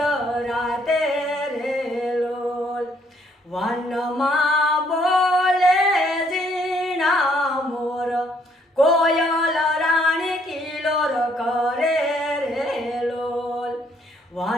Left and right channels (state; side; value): normal; both; correlation 0.67